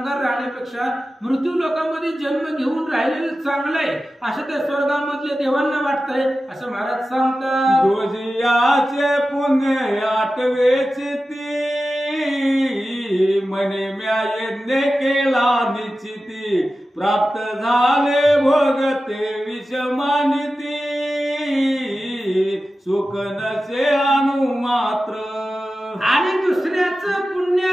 राहण्यापेक्षा मृत्यू लोकांमध्ये जन्म घेऊन राहिलेलं चांगलं आहे असं त्या स्वर्गामधल्या देवांना वाटतंय असं महाराज सांगतात. दुजियाचे पुण्य आठवेची ती म्हणे म्या यज्ञ केला निश्चिती प्राप्त झाले भोगते विषमानिती सुख नसे अनु मात्र. आणि दुसऱ्याचं पुण्य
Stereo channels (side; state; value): both; normal; correlation 0.94